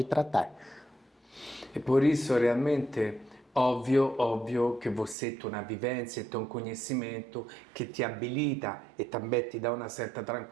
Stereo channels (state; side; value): drops out; left; at 5.2 s